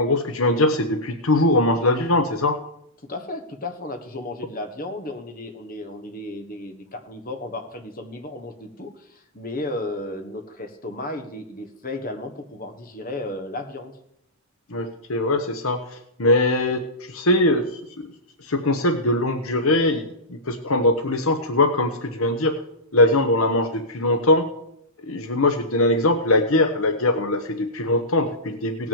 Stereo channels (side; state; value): both; normal; correlation -0.16